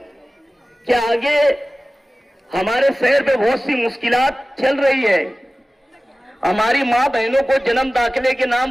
कि आगे हमारे शहर पे बहुत सी मुश्किलात चल रही है। हमारी माँ बहनों को जन्म दाखिले के नाम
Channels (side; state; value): both; normal; correlation 0.97